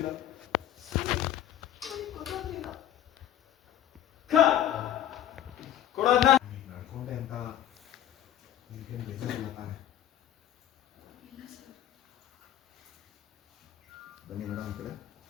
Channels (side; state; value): right; quieter; 11.7 dB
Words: ಕೊಡೋದನ್ನ ನಡ್ಕೊಂಡೆ ಅಂತ ಈಗೇನು ಬೇಜಾರಿಲ್ಲ ತಾನೆ ಬನ್ನಿ ಮೇಡಮ್ ಈ ಕಡೆ